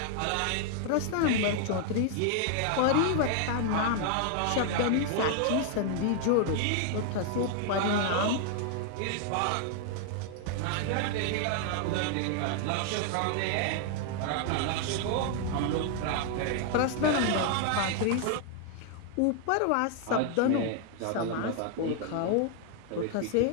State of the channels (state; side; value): different; both; correlation 0.00